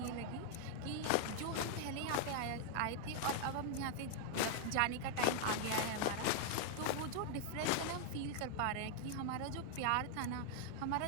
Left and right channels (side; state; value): both; different; correlation -0.01